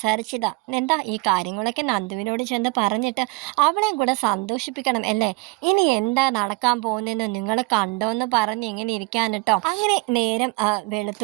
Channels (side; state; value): left; quieter; 25.9 dB